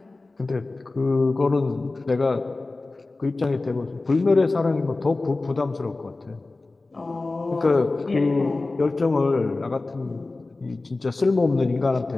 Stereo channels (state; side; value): quieter; right; 3.3 dB